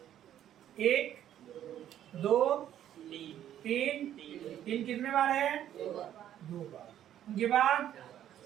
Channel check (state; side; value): quieter; left; 11.2 dB